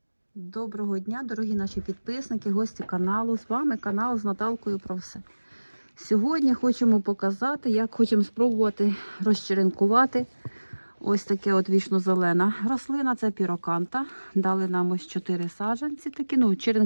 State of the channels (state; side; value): inverted; both; correlation -1.00